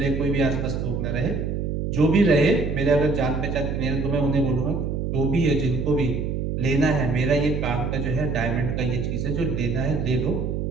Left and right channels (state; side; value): noise; right; hum, 2 dB below the sound